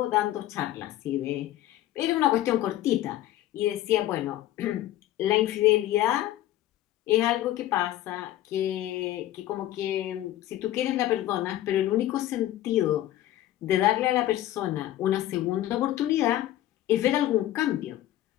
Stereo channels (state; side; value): quieter; right; 13.9 dB